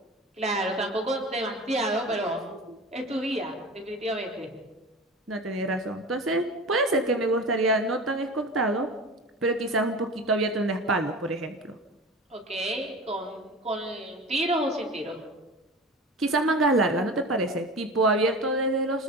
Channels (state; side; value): normal; both; correlation 0.33